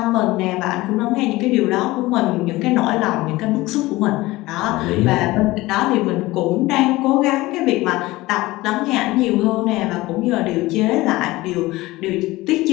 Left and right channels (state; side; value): quieter; right; 19.3 dB